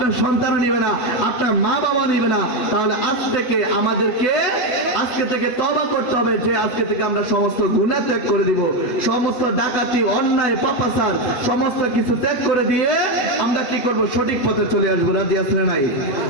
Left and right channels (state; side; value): late; right; 8.1 ms